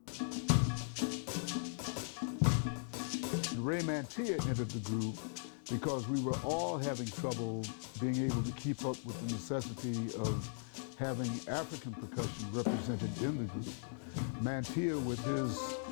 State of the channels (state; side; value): silent; right; digital silence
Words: Ray Mantia entered the group because we were all having trouble being able to keep up with the necessity of having African percussion represented in the group. Mantia, with his